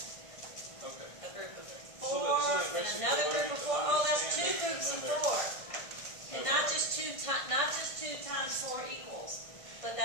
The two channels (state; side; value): late; right; 1.6 ms